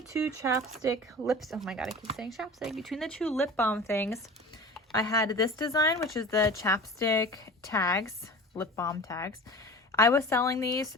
chapstick lips, oh my god, I keep saying chapstick. Between the 2 lip balm things, I had this design, which is the chapstick tags, lip balm tags. I was selling these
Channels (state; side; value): normal; both; correlation 0.37